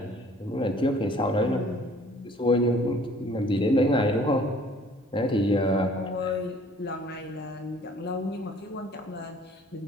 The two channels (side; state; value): both; normal; correlation 0.55